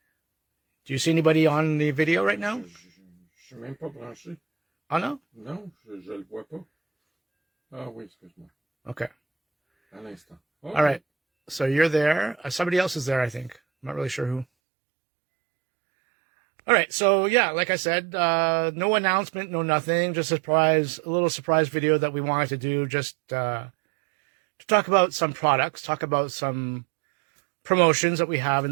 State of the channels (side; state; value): left; drops out; at 14.5 s